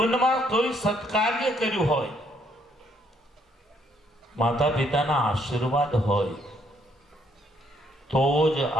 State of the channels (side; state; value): both; normal; correlation 0.70